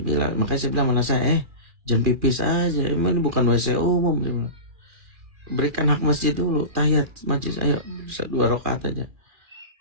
Makanya saya bilang mana saya, jangan pipis aja, ini bukan WC umum. Berikan hak masjid dulu, tahiyat masjid, ayo 2 rakaat aja.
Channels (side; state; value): left; late; 2.4 ms